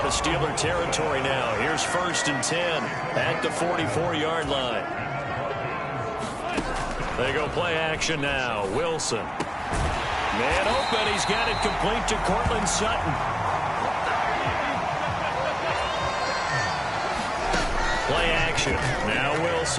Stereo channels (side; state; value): both; identical; correlation 1.00